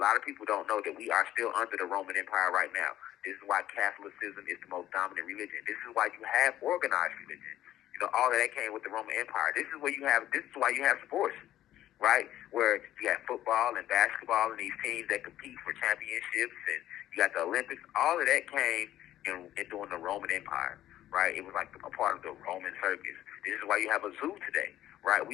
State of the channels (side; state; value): right; quieter; 13.1 dB